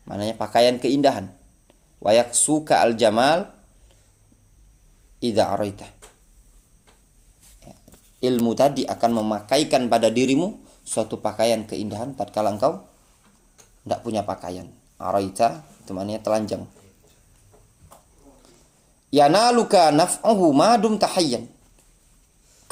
maknanya pakaian keindahan. Wa yaksuka al jamal idza araita. Ilmu tadi akan memakaikan pada dirimu suatu pakaian keindahan tatkala engkau tidak punya pakaian. Araita itu maknanya telanjang. Yanaluka naf'uhu madum tahayyan.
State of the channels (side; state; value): both; identical; correlation 1.00